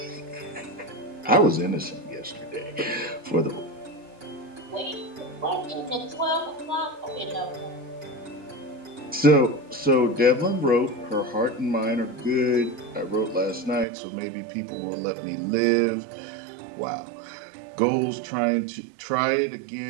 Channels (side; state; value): left; drops out; at 13.9 s